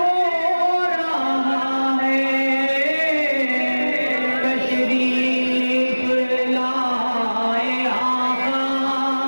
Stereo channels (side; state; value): both; inverted; correlation -1.00